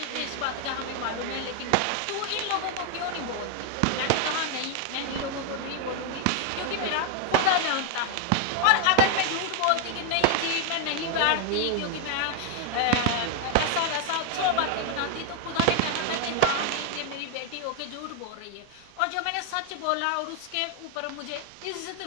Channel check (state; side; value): different; both; correlation 0.00